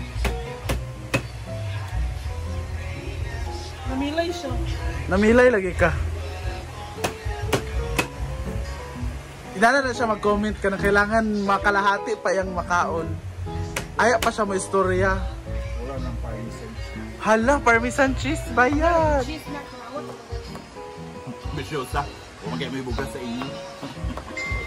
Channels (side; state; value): both; identical; correlation 1.00